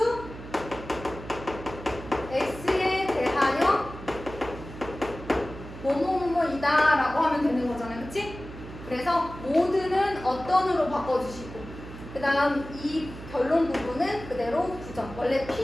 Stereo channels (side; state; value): right; noise; hum, 13 dB below the sound